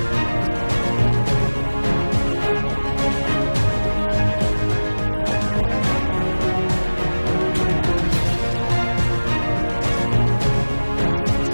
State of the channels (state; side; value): inverted; both; correlation -1.00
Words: нанесено поражение формированием горно-штурмовой бригады Вооруженных сил Украины и 4 бригад территориальной обороны. Потери противника за неделю на данном направлении составили до